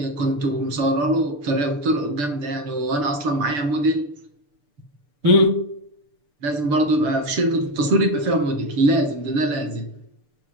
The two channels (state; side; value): late; left; 6.8 ms